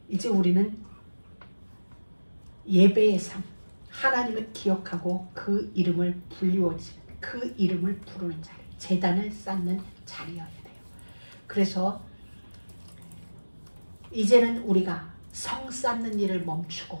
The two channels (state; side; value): inverted; both; correlation -1.00